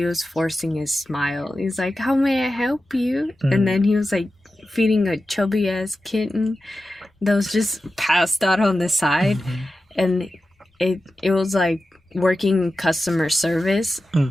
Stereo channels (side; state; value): both; normal; correlation 0.93